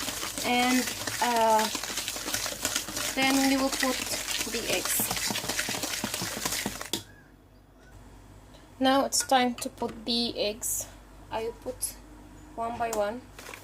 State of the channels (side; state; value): both; identical; correlation 1.00